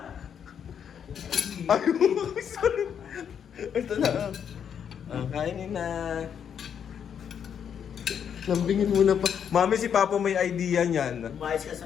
Ay, sorry. Ito na. Kainin na. Lambingin muna pa. Mami, si Papa may idea niyan. Umayos ka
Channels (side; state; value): right; quieter; 8.1 dB